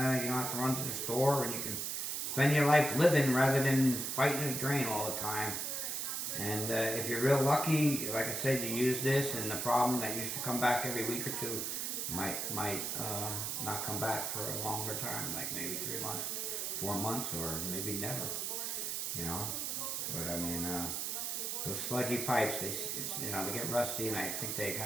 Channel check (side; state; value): right; noise; hiss, 2 dB below the sound